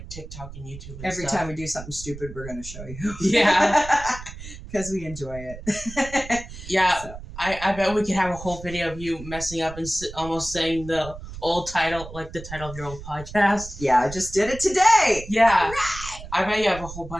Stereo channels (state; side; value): noise; right; rumble, 13 dB below the sound